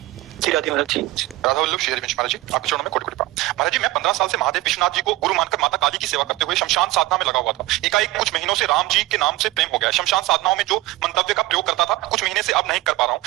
जी राधे महाराज जी। राधा वल्लभ श्री हरिवंश महाराज जी, आपके चरणों में कोटि कोटि प्रणाम। महाराज जी, मैं 15 साल से महादेव विश्वनाथ जी को गुरु मानकर माता काली की सेवा करते हुए शमशान साधना में लगा हुआ था। एकाएक कुछ महीनों से राम जी के नाम से प्रेम हो गया। शमशान साधनाओं में जो मंतव्य का प्रयोग करता था, कुछ महीने से अब नहीं कर पा रहा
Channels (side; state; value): left; quieter; 18.4 dB